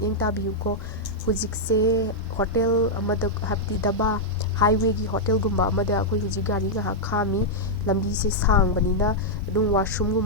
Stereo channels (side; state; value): both; normal; correlation -0.05